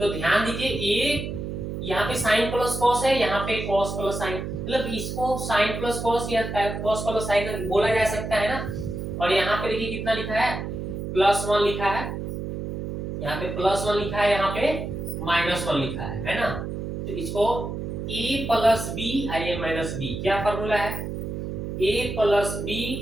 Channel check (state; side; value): noise; right; hum, 5 dB below the sound